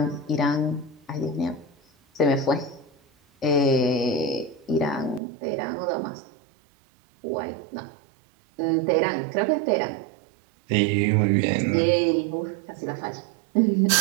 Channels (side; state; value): left; drops out; at 5.2 s